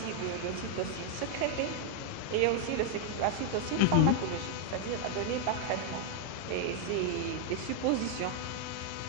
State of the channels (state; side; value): different; both; correlation 0.00